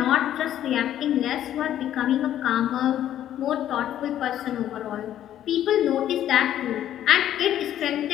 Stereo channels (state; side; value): quieter; right; 11.5 dB